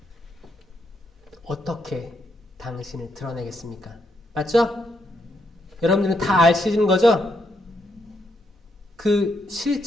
어떻게 당신을 드러내겠습니까? 맞죠? 여러분들은 다 아시는 거죠? 그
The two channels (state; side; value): normal; both; correlation 0.78